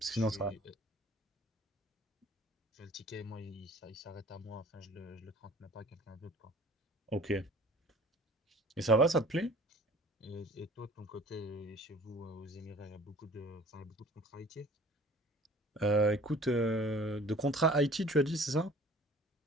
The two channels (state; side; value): normal; both; correlation 0.50